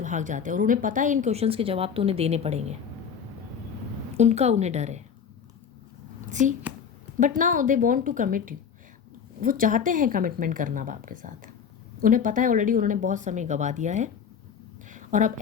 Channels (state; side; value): quieter; right; 7.2 dB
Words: भाग जाते हैं, और उन्हें पता है इन क्वेश्चंस के जवाब तो उन्हें देने पड़ेंगे, उन्हें डर है। See, but now they want to commit you, वो चाहते हैं कमिटमेंट करना अब आपके साथ। उन्हें पता है ऑलरेडी उन्होंने बहुत समय गवा दिया है, और अब